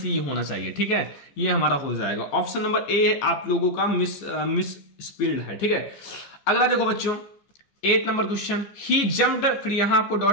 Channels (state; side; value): late; right; 14 ms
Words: होना चाहिए, ठीक है, ये हमारा हो जाएगा। ऑप्शन नंबर ए आप लोगों का मिस स्पील्ड है, ठीक है। अगला देखो बच्चों 8 नंबर क्वेश्चन, ही जम्प्ड, फिर यहां आपको